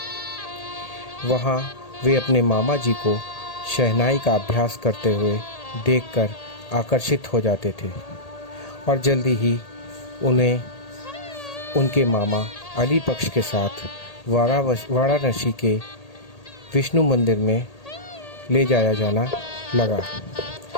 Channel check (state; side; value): late; right; 1.8 ms